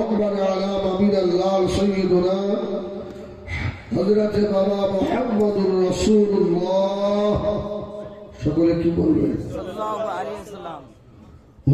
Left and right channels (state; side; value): identical; both; correlation 1.00